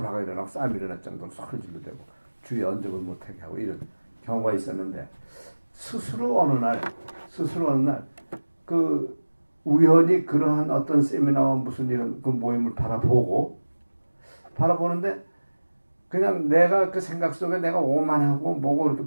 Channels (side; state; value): both; inverted; correlation -1.00